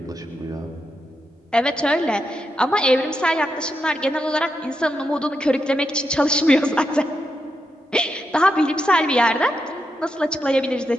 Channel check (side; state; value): both; normal; correlation 0.84